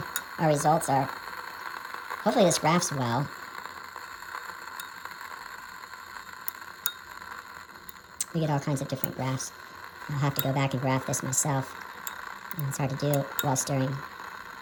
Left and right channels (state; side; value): identical; both; correlation 1.00